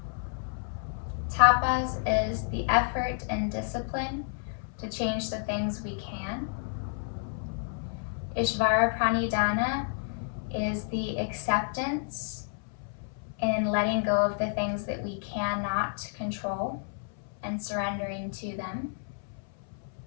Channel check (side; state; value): right; silent; 58 dB below the other